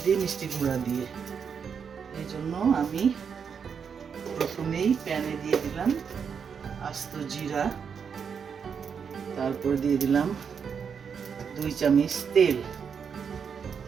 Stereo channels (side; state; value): left; quieter; 6.7 dB